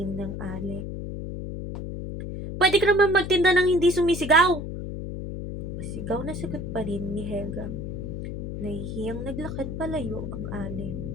ng ale. "Pwede ka naman magtinda ng hindi sumisigaw!" Pasigaw na sagot pa rin ni Helga. Nahihiyang naglakad palayo ang ale.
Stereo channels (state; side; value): noise; left; hum, 6 dB below the sound